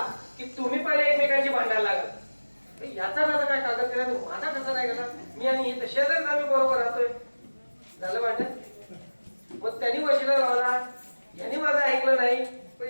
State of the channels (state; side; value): inverted; both; correlation -1.00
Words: की तुम्ही पहिले एकमेकांची भांडायला लागल याचा माझा काय कागद केला माझा कसा नाही गेला मी आणि हे शेजारीच आम्ही बरोबर राहतोय झालं भांडण. मग त्यांनी वशिला लावला यांनी माझं ऐकलं नाही पण